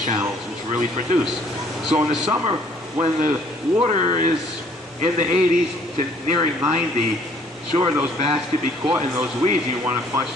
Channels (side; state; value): both; normal; correlation 0.60